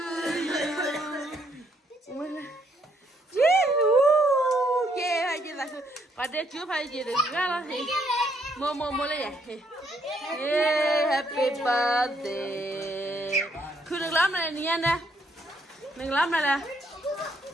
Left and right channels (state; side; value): normal; both; correlation 0.71